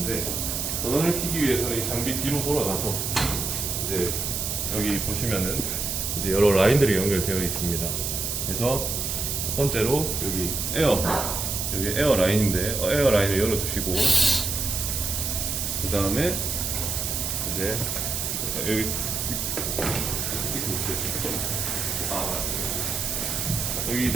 전원을 켜기 위해서는 이 장비 뒤로 돌아가서 이제 여기 보시면은 이제 여러 라인들이 연결되어 있습니다. 그래서 첫 번째로 여기 에어 라인인데 에어 라인을 열어주시고, 그 다음에 이제 여기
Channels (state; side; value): noise; right; hiss, 2 dB below the sound